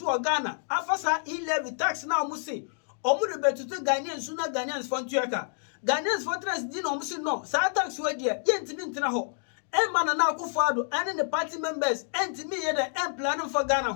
we Ghana. Afasa levy tax now musi. Omu de betutu Ghanaians suna Ghanaians for ntuaka. Ghanaians for trans di no musi no. Sa tax we dia yentimi ntina ho. Emma na akufado and the party members entimi ye the plan for Ghana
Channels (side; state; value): right; silent; digital silence